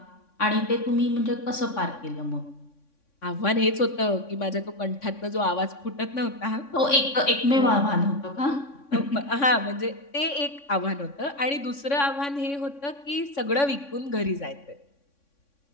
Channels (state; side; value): late; right; 3.6 ms